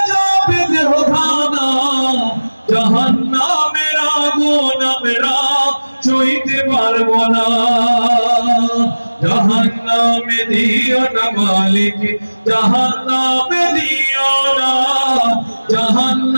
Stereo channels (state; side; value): inverted; both; correlation -1.00